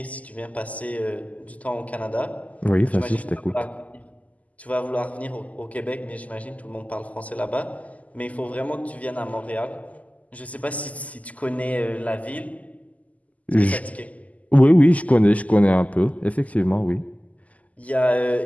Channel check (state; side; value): late; right; 0.074 ms